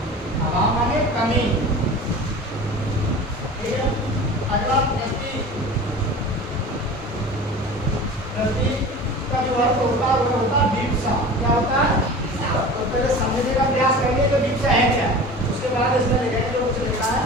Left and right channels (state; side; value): normal; both; correlation 0.37